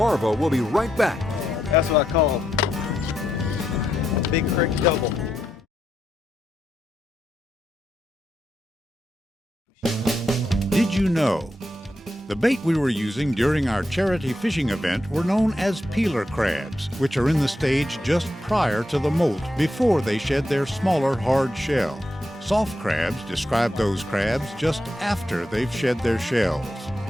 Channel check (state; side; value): normal; both; correlation 0.83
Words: will be right back. That's what I call a big creek double. Did you know? The bait we were using during our charity fishing event were known as peeler crabs, which are in the stage just prior to the molt, before they shed their smaller hard shell. Soft crabs describe those crabs just after they've shed their shells.